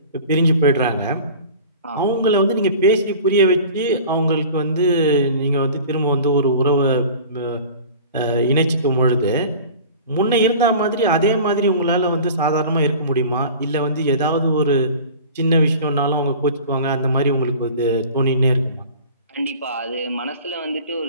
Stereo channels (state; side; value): inverted; both; correlation -0.41